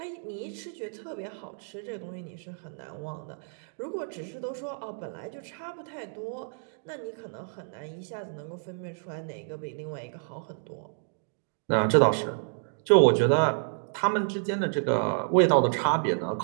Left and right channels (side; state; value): left; silent; digital silence